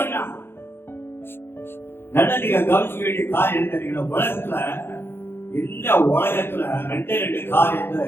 சொன்னான். நல்லா நீங்க கவனிக்க வேண்டிய காரியம் என்ன தெரியுங்களா? உலகத்துல இந்த உலகத்துல 2 காரியம் தான்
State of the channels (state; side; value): late; right; 0.11 ms